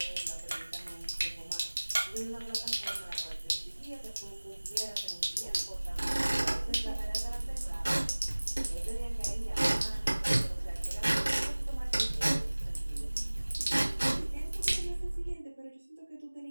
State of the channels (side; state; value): both; inverted; correlation -1.00